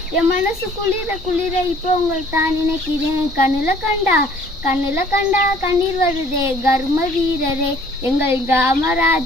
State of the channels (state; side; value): normal; both; correlation 0.56